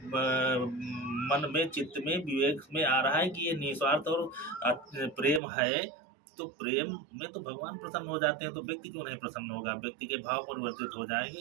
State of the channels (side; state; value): left; drops out; at 5.4 s